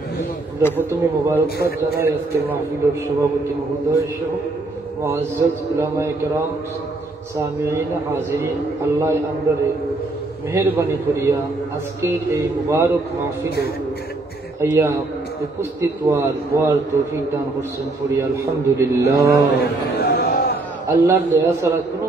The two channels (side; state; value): left; quieter; 3.0 dB